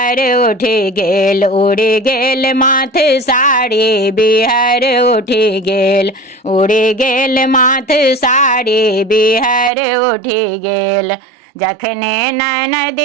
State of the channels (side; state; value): left; drops out; at 9.7 s